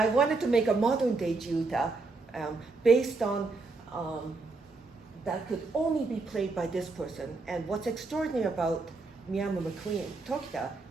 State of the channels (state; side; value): quieter; left; 3.7 dB